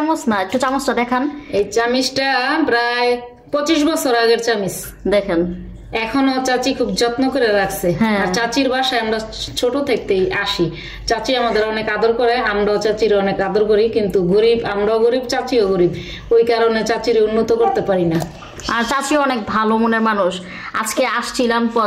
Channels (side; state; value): both; identical; correlation 1.00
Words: না, একটু চামচটা দেখান। এই চামিচটা প্রায় 25 বছর আগের চামিচ, দেখেন এখনো চাচি খুব যত্ন করে রাখছে। আর চাচির বাসায় আমরা ছোট থেকেই আসি, চাচি আমাদের অনেক আদর করে, আমরাও চাচির অনেক আদর করি। কিন্তু গরিব, আমরাও গরিব, চাচিও গরিব, ওই কারণে চাচির উন্নত করতে পারি না। আর চাচি অনেক ভালো মনের মানুষ। আজকে আসছিলাম,